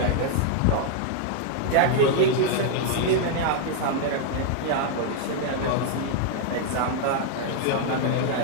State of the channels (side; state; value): both; different; correlation 0.00